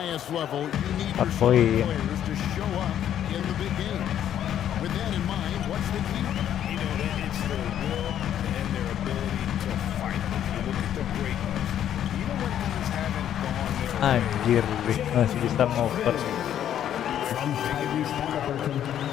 level, you need your star players to show up in the big game. With that in mind, what's the key? You know, it's their will and their ability to fight. If you look at the great ones, even when things haven't gone their way, Anjir, masih bisa ngoper.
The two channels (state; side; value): quieter; right; 10.4 dB